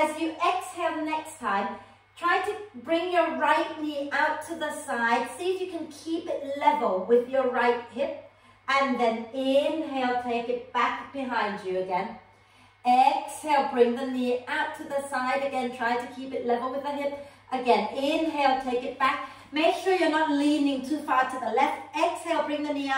you exhale next time, try to bring your right knee out to the side. See if you can keep it level with your right hip. And then inhale, take it back behind you again. Exhale, bring the knee out to the side again. Try to keep it level with the hip. Again, inhale, take it back. Make sure you're not leaning too far to the left. Exhale, bring the knee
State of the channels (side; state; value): both; identical; correlation 1.00